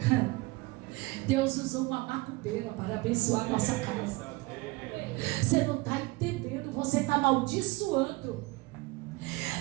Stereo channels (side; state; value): left; quieter; 23.3 dB